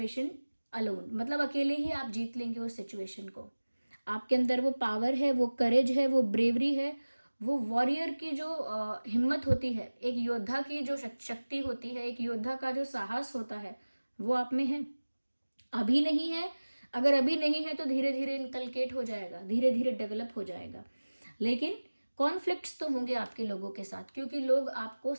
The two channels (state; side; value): inverted; both; correlation -1.00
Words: alone, मतलब अकेले ही आप जीत लेंगे उस सिचुएशन को। आपके अंदर वो पावर है, वो करेज है, वो ब्रेवरी है, वो वॉरियर की जो हिम्मत होती है, एक योद्धा की जो शक्ति होती है, एक योद्धा का जो साहस होता है, वो आप में है। अभी नहीं है, अगर अभी नहीं है तो धीरे धीरे इनकलकेट हो जाएगा, धीरे धीरे डेवलप हो जाएगा। लेकिन कॉन्फ्लिक्ट्स तो होंगे आपके लोगों के साथ, क्योंकि लोग आपको